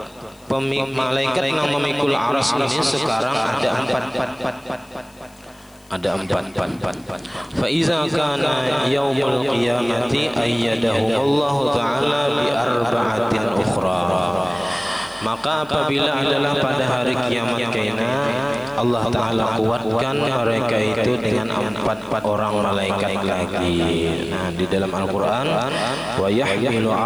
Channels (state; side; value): noise; left; hiss, 29 dB below the sound